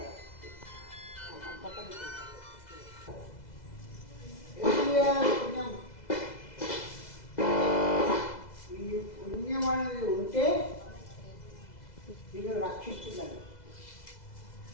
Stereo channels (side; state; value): right; late; 2.0 ms